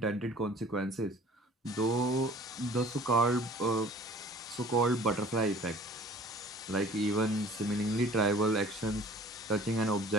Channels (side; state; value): both; normal; correlation 0.49